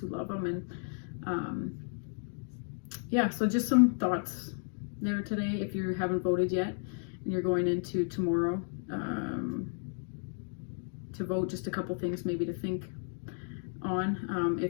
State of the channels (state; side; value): silent; right; 56 dB below the other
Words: love Him. And so just some thoughts there today. If you haven't voted yet and you're going into tomorrow to vote, just a couple things maybe to think on.